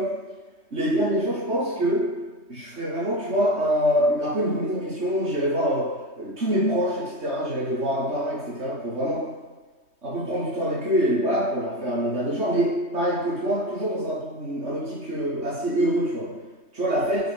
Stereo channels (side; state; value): left; late; 3.2 ms